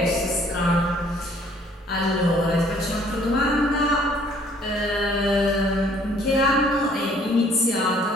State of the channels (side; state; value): both; normal; correlation 0.59